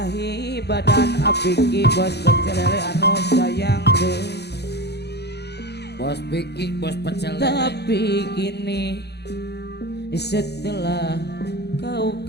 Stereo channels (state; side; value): late; right; 0.48 ms